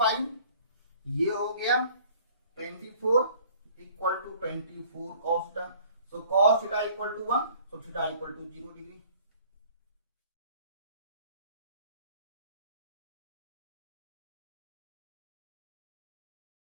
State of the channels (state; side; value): inverted; both; correlation -0.53